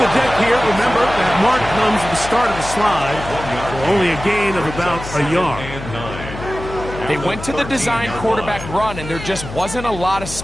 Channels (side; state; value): left; noise; hum, 11 dB below the sound